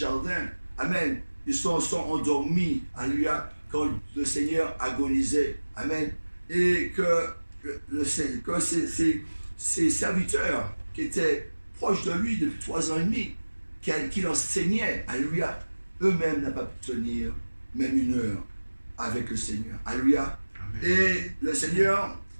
amen, ils sont endormis, alléluia, quand le Seigneur agonisait. Amen. Et que ses serviteurs qui étaient proches de lui depuis 3 ans et demi, qui l'enseignaient, alléluia, eux-mêmes n'ont pas pu tenir même 1 heure avec le Seigneur. Alléluia. Et le Seigneur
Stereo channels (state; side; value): inverted; both; correlation -1.00